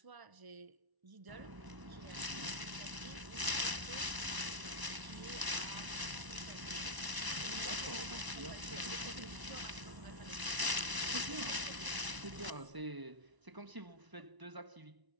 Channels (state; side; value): late; left; 1.0 ms